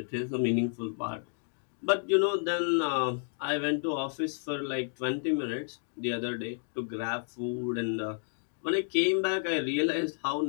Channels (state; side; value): silent; right; 57 dB below the other